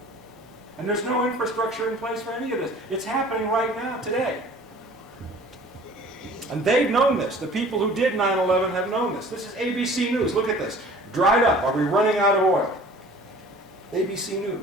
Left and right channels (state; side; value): normal; both; correlation 0.48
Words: And there's no infrastructure in place for any of this. It's happening right now, today. And they've known this. The people who did 9/11 have known this. This is ABC News. Look at this. Dried up. Are we running out of oil? ABC